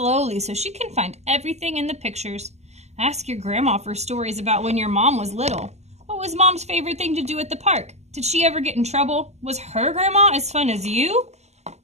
so she can find everything in the pictures. Ask your grandma for stories about when your mom was little. What was mom's favorite thing to do at the park? Did she ever get in trouble? Was her grandma as fun as you?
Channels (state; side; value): late; left; 0.32 ms